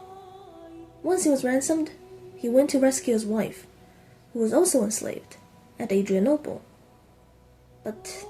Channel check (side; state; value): both; identical; correlation 1.00